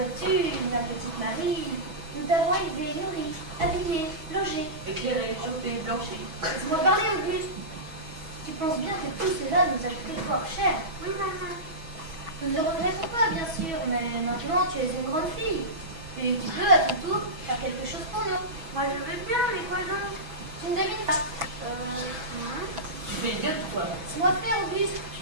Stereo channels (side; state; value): left; late; 6.2 ms